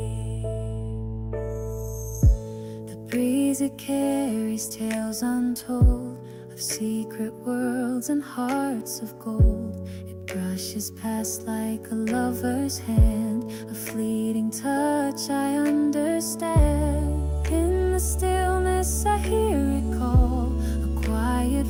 The breeze, it carries tales untold of secret worlds and hearts of gold. It brushes past like a lover's hand, a fleeting touch I understand. In the stillness I hear it call, a quiet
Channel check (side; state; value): both; identical; correlation 1.00